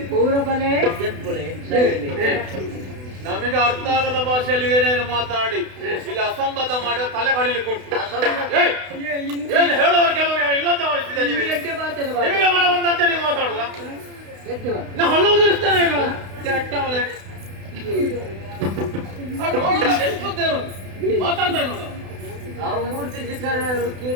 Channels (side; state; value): left; late; 32 ms